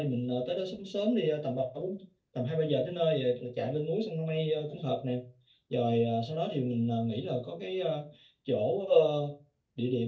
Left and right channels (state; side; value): identical; both; correlation 1.00